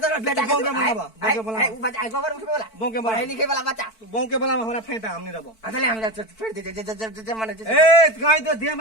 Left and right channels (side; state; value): right; late; 4.5 ms